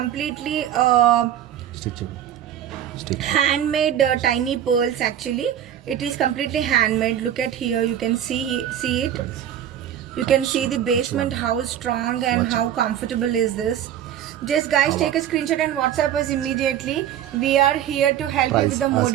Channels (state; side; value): quieter; left; 10.4 dB